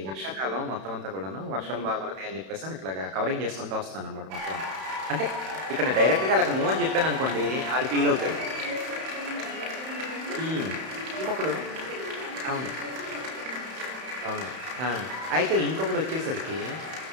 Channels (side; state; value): left; late; 31 ms